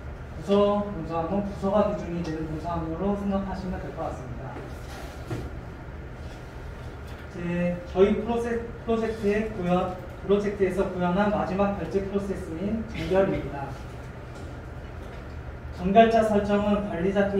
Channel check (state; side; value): identical; both; correlation 1.00